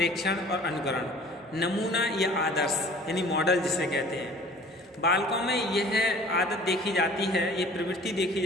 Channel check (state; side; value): normal; both; correlation 0.48